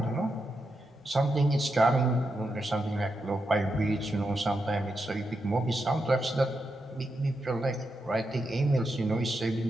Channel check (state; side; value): normal; both; correlation 0.85